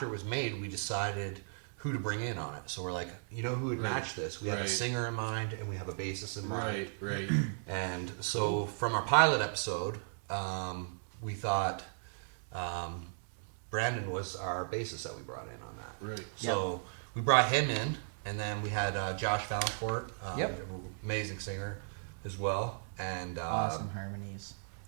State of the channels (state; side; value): silent; left; digital silence